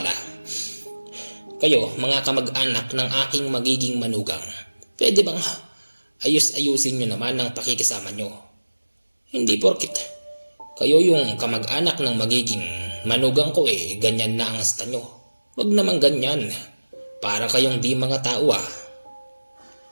Kayo mga kamag-anak ng aking magiging manugang, pwede bang ayus-ayusin nyo naman ang pakikisama nyo? Hindi porkit kayo yung kamag-anak ng magiging manugang ko eh, ganyan na ang asta nyo. Wag naman ganyan. Para kayong di mga tao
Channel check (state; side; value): inverted; both; correlation -1.00